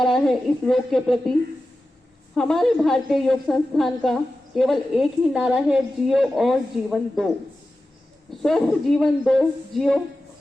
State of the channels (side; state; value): both; normal; correlation 0.93